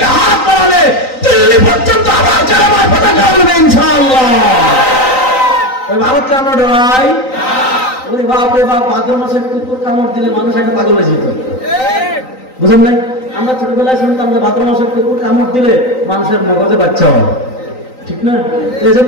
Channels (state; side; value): late; right; 3.9 ms